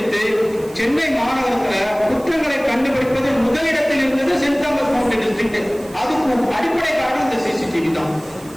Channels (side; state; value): right; noise; hiss, 22 dB below the sound